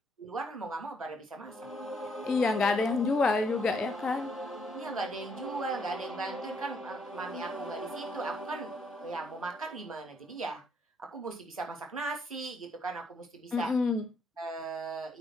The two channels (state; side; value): normal; both; correlation 0.72